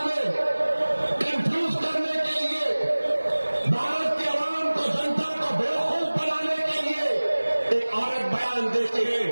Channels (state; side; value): inverted; both; correlation -1.00